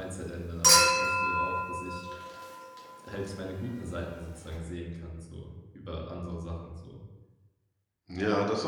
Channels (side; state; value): both; identical; correlation 1.00